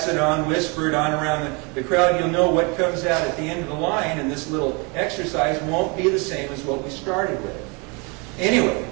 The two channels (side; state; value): left; quieter; 31.0 dB